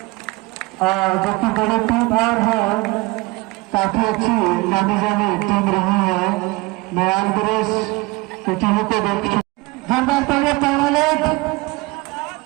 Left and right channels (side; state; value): left; quieter; 23.4 dB